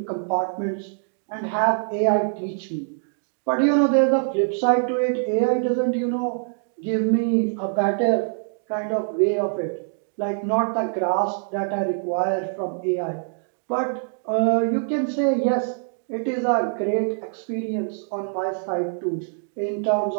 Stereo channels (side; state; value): left; silent; digital silence